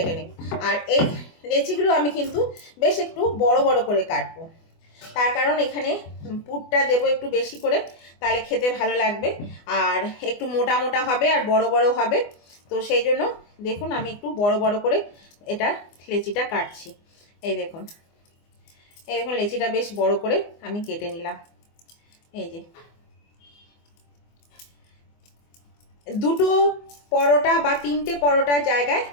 নিই। আর এই লেচিগুলো আমি কিন্তু বেশ একটু বড় বড় করে কাটবো, তার কারণ এখানে পুরটা দেবো একটু বেশি করে, তাহলে খেতে ভালো লাগবে। আর একটু মোটা মোটা হবে আর বড় বড় হবে। তো সেই জন্য দেখুন আমি একটু বড় বড় করে এটা লেচিটা কাটছি। এই দেখুন লেচিটা বেশ বড় করে আমি কেটে নিলাম। এই যে দুটো পরোটা বা 3টে পরোটার জায়গায়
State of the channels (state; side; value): late; right; 24 ms